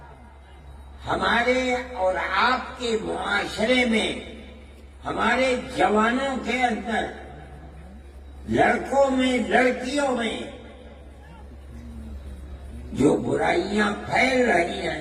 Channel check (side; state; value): both; identical; correlation 1.00